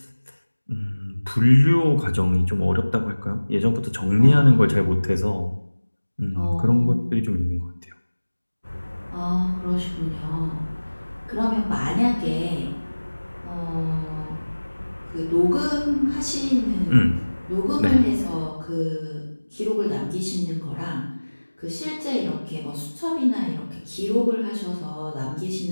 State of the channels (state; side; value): inverted; both; correlation -1.00